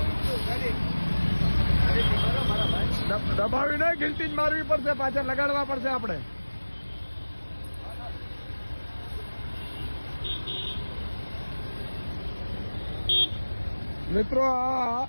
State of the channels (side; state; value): both; inverted; correlation -1.00